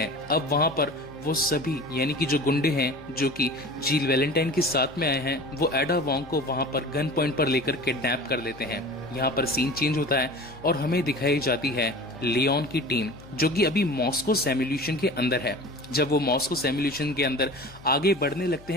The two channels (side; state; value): left; noise; hum, 21 dB below the sound